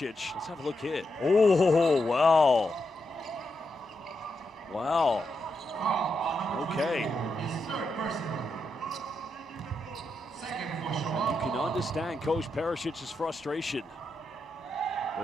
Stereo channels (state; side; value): normal; both; correlation 0.84